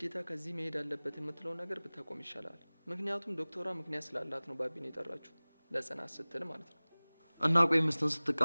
ከዚህ መሄድ አለበት የምትለው ነገር ብታቆም ይሻላል። ምክንያቱም ዶክተሯ ምክንያት ስላላት ነው ባቢን የጠራችሁ፣ ለጽናት ስትል ማለት ነው። እና ቆይ ሚስትን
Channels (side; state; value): both; inverted; correlation -1.00